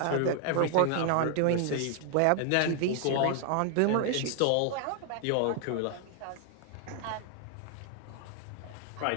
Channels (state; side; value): different; both; correlation 0.00